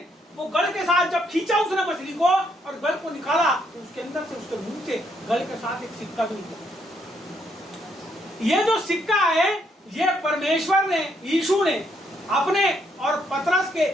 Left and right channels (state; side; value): normal; both; correlation 0.73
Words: वो गल के साथ जब खींचा उसने मछली को और गल को निकाला, तो उसके अंदर से, उसके मुंह से गल के साथ एक सिक्का भी निकला। ये जो सिक्का है, ये परमेश्वर ने, यीशु ने अपने और पतरस के